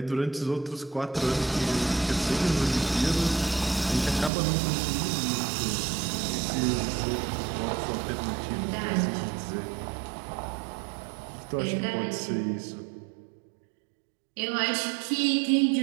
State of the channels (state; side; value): drops out; left; at 4.3 s